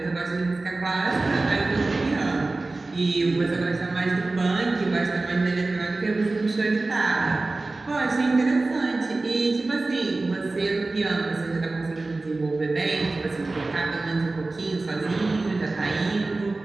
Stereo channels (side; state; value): left; quieter; 3.3 dB